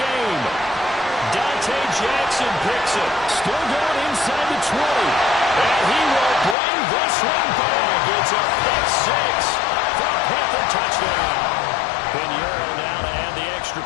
Dante Jackson picks it. Still going inside the 20. And he will bring this one back. It's a pick 6 for a Panther touchdown. Pinheiro now to add the extra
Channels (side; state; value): right; drops out; at 6.6 s